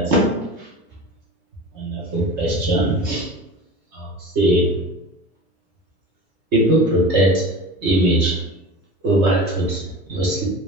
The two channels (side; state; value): both; normal; correlation 0.33